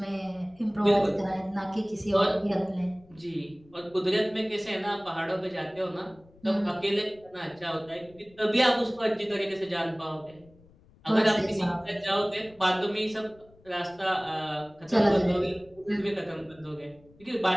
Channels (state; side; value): noise; left; rumble, 27 dB below the sound